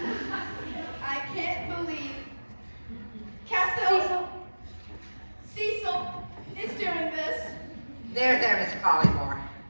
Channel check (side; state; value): both; inverted; correlation -1.00